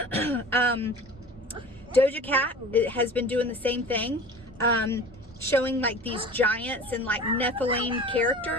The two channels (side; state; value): both; normal; correlation 0.39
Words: Doja Cat has been doing the same thing, showing like these giants and like Nephilim